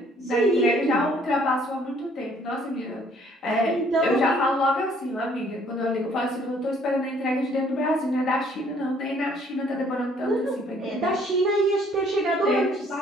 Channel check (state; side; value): normal; both; correlation 0.61